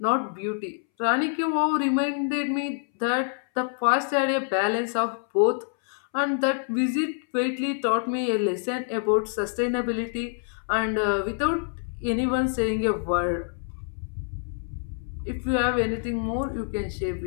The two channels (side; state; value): right; silent; 61 dB below the other